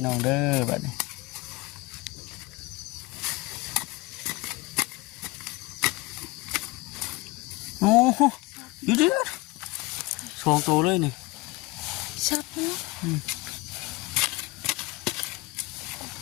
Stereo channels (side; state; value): right; quieter; 23.1 dB